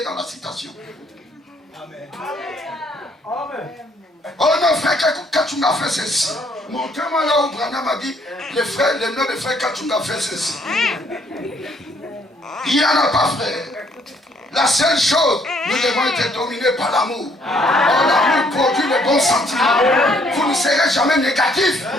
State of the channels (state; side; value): normal; both; correlation 0.66